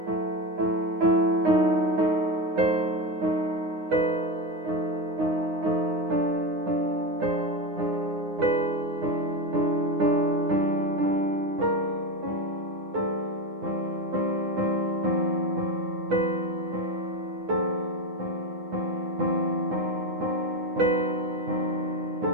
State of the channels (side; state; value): left; late; 9.7 ms